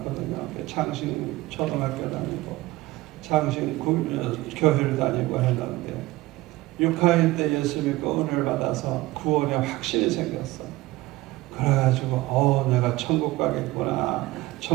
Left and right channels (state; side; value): quieter; left; 19.0 dB